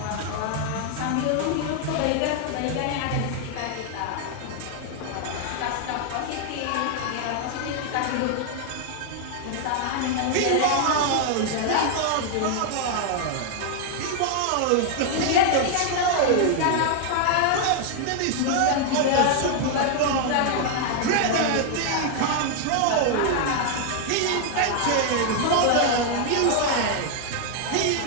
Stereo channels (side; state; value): both; different; correlation 0.00